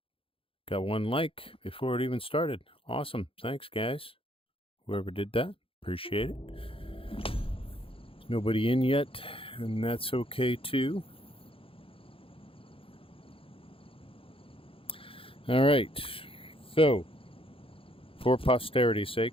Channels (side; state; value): right; late; 0.27 ms